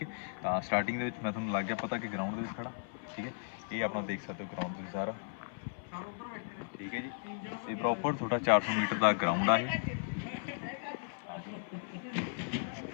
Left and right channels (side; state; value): right; silent; 54 dB below the other